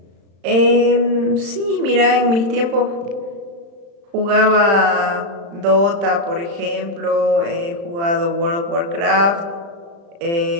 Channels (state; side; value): late; left; 35 ms